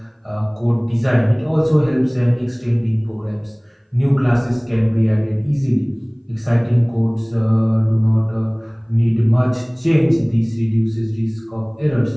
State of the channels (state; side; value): identical; both; correlation 1.00